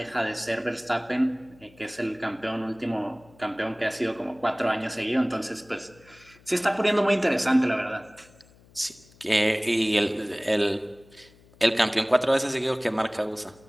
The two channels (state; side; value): noise; left; hum, 27 dB below the sound